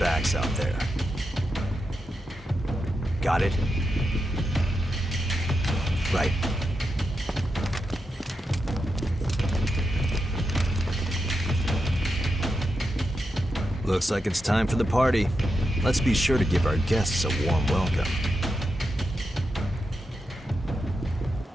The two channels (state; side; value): normal; both; correlation 0.86